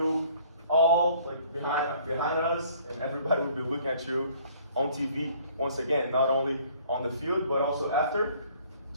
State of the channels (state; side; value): inverted; both; correlation -0.57